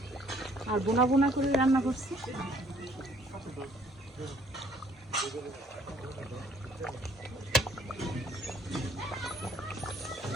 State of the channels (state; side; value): normal; both; correlation 0.62